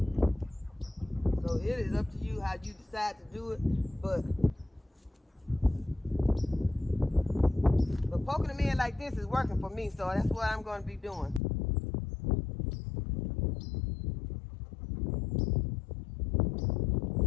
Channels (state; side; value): drops out; right; at 11.4 s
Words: So it is up to you how you decide to do it, but poking them in like this is working for me, so that's what I'm going to be doing.